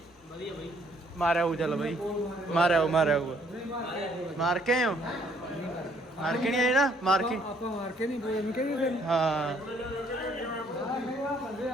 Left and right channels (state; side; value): normal; both; correlation 0.65